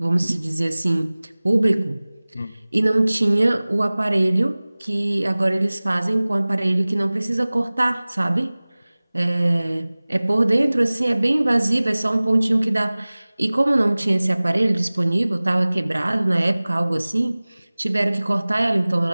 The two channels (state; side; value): inverted; both; correlation -0.99